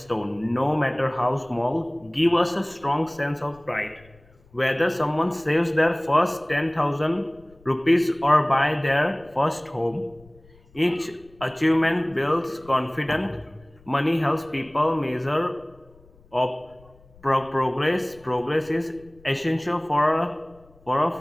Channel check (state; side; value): noise; left; rumble, 27 dB below the sound